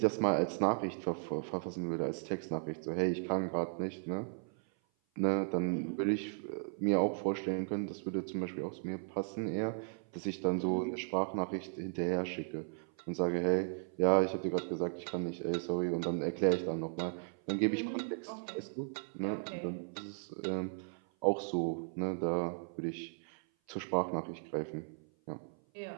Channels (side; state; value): left; silent; 54 dB below the other